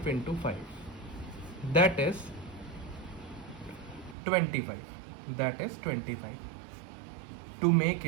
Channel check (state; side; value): drops out; left; at 4.2 s